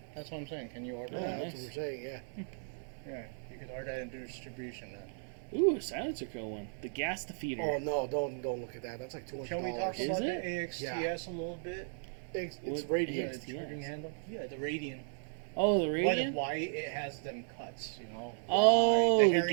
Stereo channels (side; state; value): left; silent; digital silence